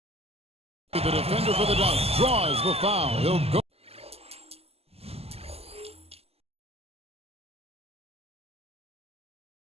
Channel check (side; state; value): left; late; 0.29 ms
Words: The defender for the dunk draws the foul. He'll go.